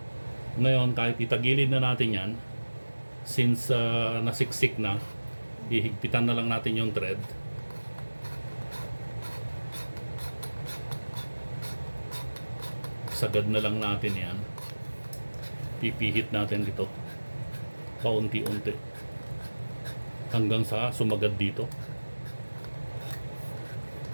Ngayon, kahit itagilid na natin yan, since nasiksik na, ihigpitan na lang natin yung thread. Sagad na lang natin yan. Pipihit natin dito paunti-unti hanggang sa sumagad dito.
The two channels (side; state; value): both; inverted; correlation -1.00